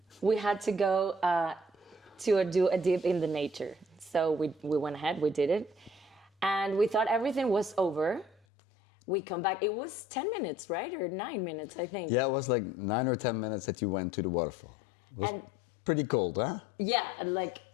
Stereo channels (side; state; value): right; drops out; at 8.4 s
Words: we had to go to do a dip in the nature. So we went ahead, we did it. And we thought everything was over. We come back, it was 10 minutes, right? Or 9 minutes, I think. Yeah, it was like 9 or 10 minutes that you went to the waterfall. It was pretty cold, huh? Yeah, like